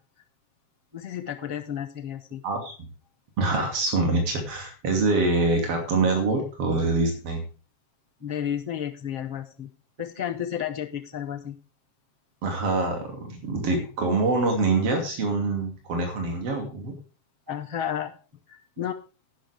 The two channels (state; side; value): late; left; 7.5 ms